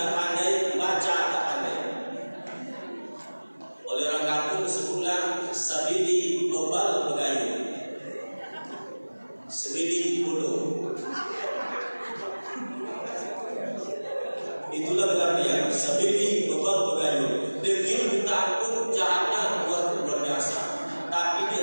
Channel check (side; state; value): both; inverted; correlation -1.00